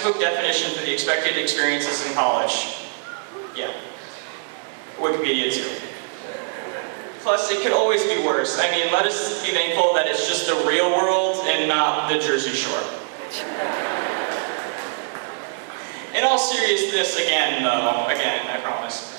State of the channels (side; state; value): left; silent; digital silence